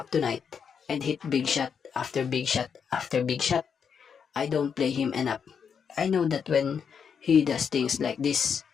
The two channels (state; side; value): quieter; right; 6.9 dB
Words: tonight and hit big shot after big shot after big shot. I don't play him enough. I know that when he does things like this,